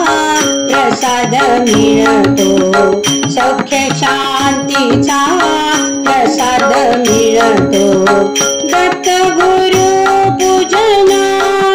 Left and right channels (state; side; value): identical; both; correlation 1.00